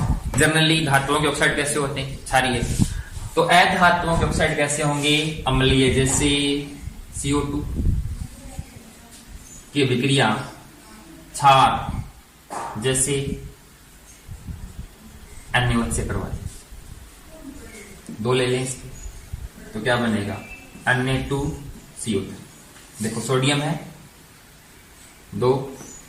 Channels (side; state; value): both; identical; correlation 1.00